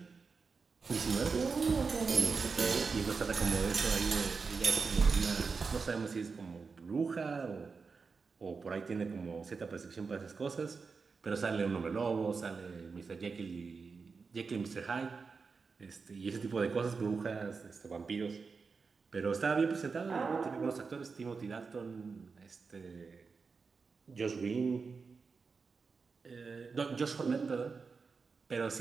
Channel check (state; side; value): quieter; left; 4.9 dB